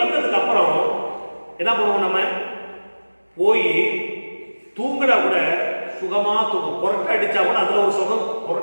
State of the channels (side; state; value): both; inverted; correlation -1.00